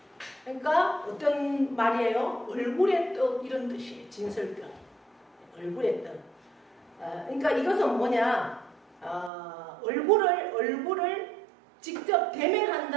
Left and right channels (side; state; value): left; drops out; at 9.3 s